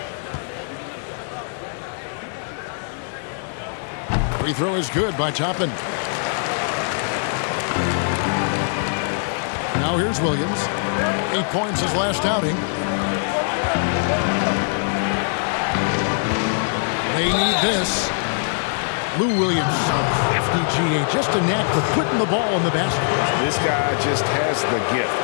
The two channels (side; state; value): right; silent; digital silence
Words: Free throw is good by Toppin. Now here's Williams. 8 points his last outing. They need this. Lou Williams, so crafty GA. Just a knack for putting the ball in the basket. This guy just has the gift.